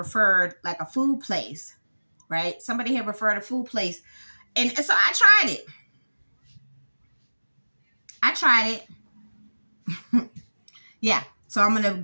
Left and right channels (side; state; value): both; inverted; correlation -1.00